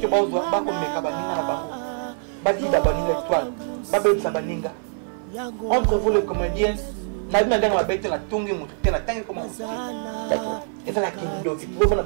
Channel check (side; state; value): left; silent; 56 dB below the other